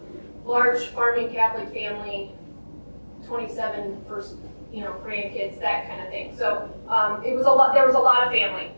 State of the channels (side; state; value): both; inverted; correlation -1.00